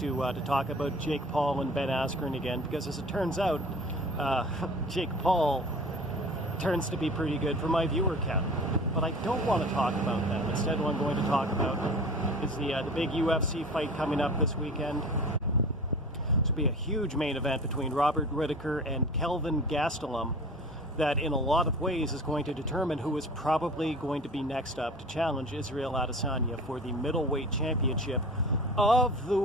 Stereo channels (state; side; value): normal; both; correlation 0.40